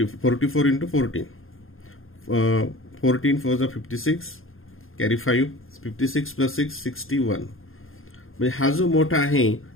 इंटू 14, 14 4 जा 56, कॅरी 5, 56 प्लस 6 61. म्हणजे हा जो मोठा आहे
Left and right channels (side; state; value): right; late; 0.60 ms